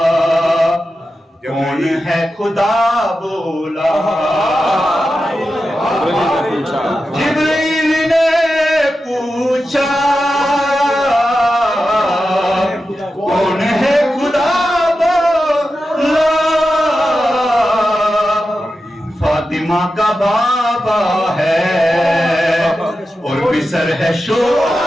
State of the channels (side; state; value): both; normal; correlation 0.91